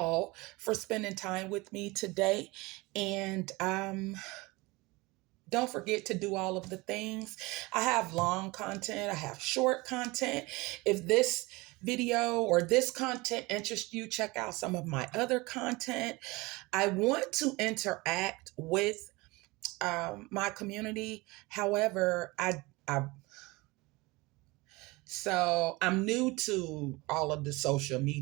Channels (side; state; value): left; quieter; 23.2 dB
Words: for spending time with me today. And don't forget to do all of the things. I have long content, I have short content. If this video or this content interests you, check out some of my other content. I want to interact with my community. However, so I'm new to all of the social